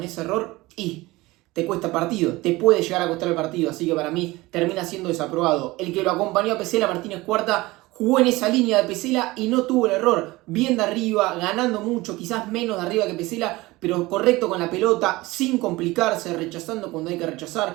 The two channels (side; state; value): left; quieter; 20.4 dB